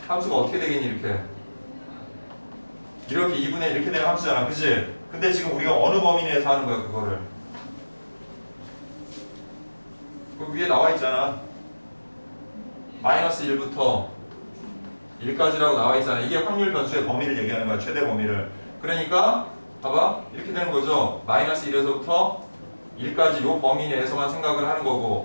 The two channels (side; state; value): both; inverted; correlation -1.00